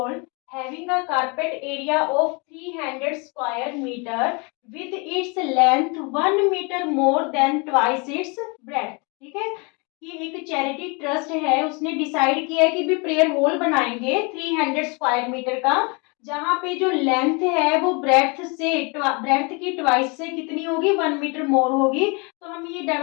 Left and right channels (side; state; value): right; quieter; 30.9 dB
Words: having a carpet area of 300 square meter with its length 1 meter more than twice its breadth. ठीक है, कि एक चैरिटी ट्रस्ट है, उसने डिसाइड किया है कि भी प्रेयर हॉल बनाएंगे 300 स्क्वायर मीटर का, जहां पे जो लेंथ है वो ब्रेथ की ट्वाइस से कितनी होगी, 1 मीटर मोर होगी। तो हमें ये